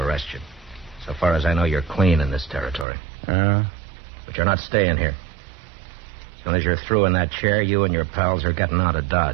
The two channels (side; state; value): left; drops out; at 2.9 s